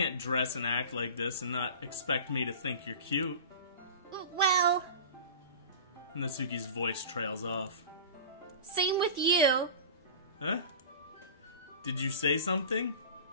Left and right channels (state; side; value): inverted; both; correlation -0.35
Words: dress and act like this and not expect me to think you're cute. Well... Natsuki's voice trails off. Same with you. Huh? Did you say something?